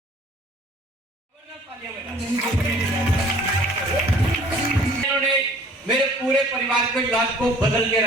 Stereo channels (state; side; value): normal; both; correlation 0.52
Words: इन्होंने मेरे पूरे परिवार के इलाज को बदल के